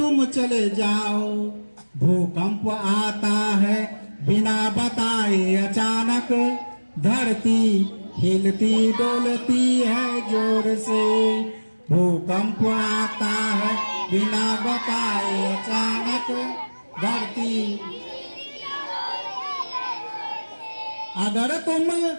चले जाओ। भूकंप आता है बिना बताए अचानक, धरती हिलती डोलती है जोर से। भूकंप आता है बिना बताए अचानक, धरती। अगर तुम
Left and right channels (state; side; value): inverted; both; correlation -1.00